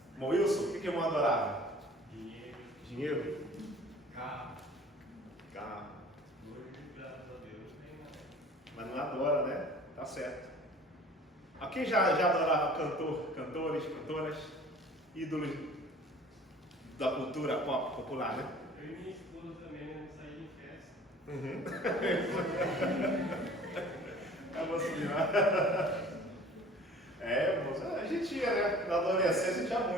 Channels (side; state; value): both; normal; correlation 0.48